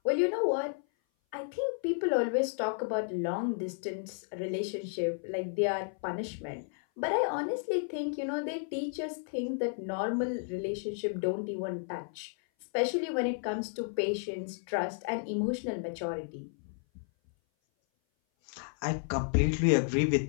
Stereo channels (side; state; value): right; silent; 56 dB below the other